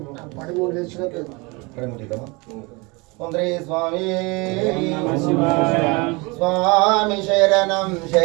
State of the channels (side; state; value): left; quieter; 27.0 dB